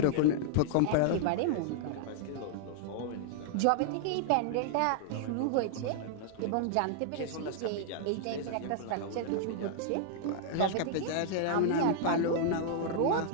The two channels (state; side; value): different; both; correlation -0.01